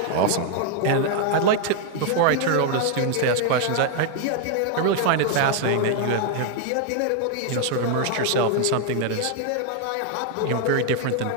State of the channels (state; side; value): different; both; correlation 0.00